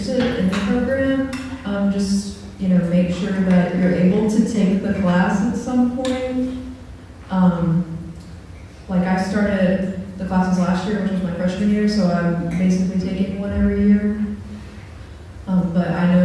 in the program, just, make sure that you're able to take the class at some point. Like I started the classes last year, which was my freshman year, so I'm basically taking one every year. But I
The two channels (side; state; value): both; identical; correlation 1.00